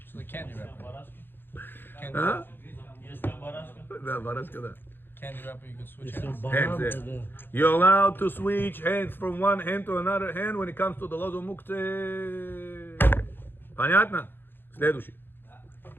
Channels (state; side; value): late; right; 0.10 ms